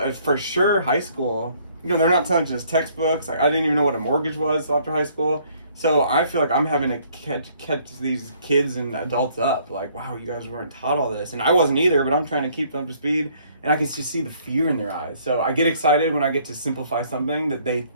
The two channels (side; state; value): both; inverted; correlation -0.62